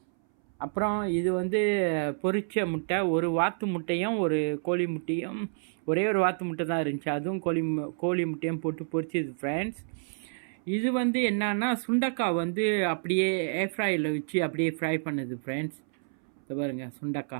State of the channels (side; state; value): left; silent; 59 dB below the other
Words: அப்புறம் இது வந்து பொரிச்ச முட்டை, ஒரு வாத்து முட்டையும் ஒரு கோழி முட்டையும், ஒரே ஒரு வாத்து முட்டை தான் இருந்துச்சு, அதுவும் கோழி முட்டையும் போட்டு பொரிச்சது ஃப்ரெண்ட்ஸ். இது வந்து என்னன்னா சுண்டக்காய் வந்து அப்படியே ஏர்ஃப்ரையில் வச்சு அப்படியே ஃப்ரை பண்ணுது ஃப்ரெண்ட்ஸ். பாருங்க